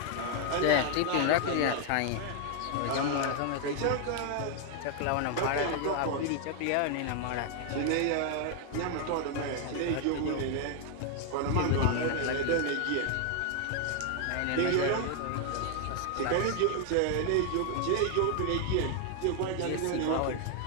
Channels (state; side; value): different; both; correlation 0.00